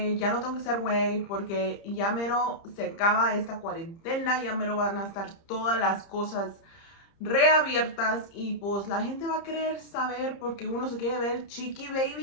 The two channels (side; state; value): right; late; 30 ms